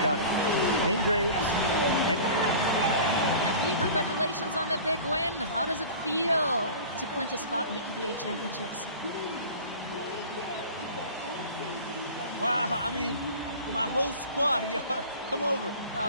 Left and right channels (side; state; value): both; inverted; correlation -0.40